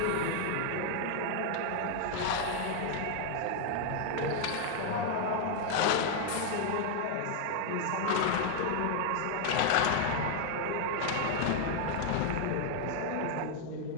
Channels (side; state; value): both; different; correlation 0.00